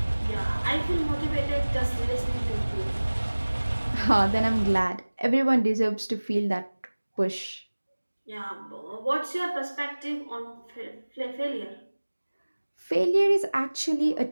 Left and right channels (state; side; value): inverted; both; correlation -1.00